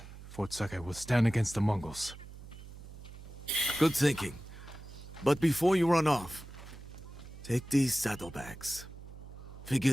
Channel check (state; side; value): noise; right; hum, 15 dB below the sound